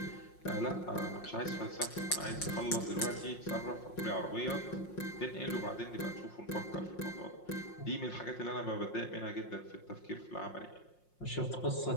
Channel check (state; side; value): late; right; 5.6 ms